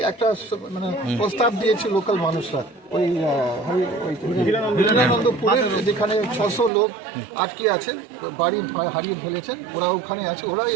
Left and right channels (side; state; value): left; drops out; at 6.7 s